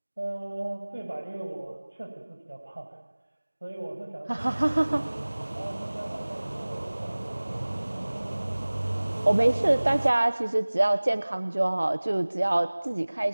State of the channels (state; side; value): inverted; both; correlation -1.00